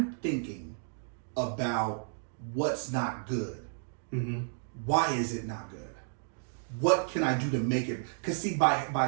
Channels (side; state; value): left; silent; digital silence